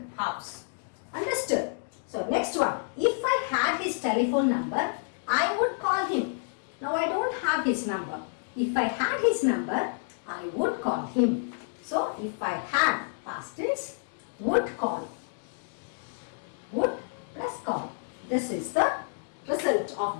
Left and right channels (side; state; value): right; silent; 58 dB below the other